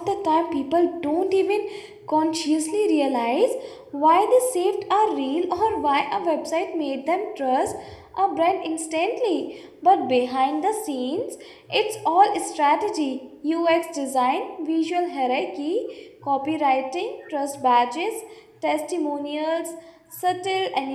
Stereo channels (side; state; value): both; identical; correlation 1.00